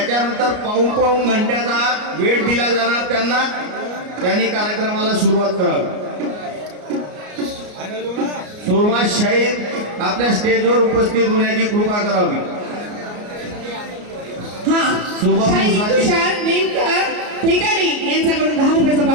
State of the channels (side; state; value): left; late; 33 ms